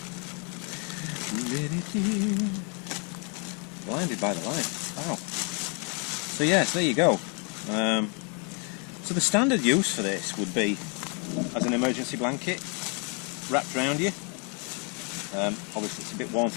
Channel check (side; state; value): right; quieter; 36.5 dB